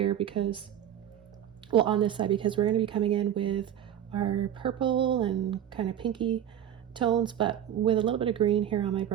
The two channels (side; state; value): left; quieter; 10.4 dB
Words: because, well, on this side, because we're going to be coming in with our purple and kind of pinky tones, but with a little bit of green here on my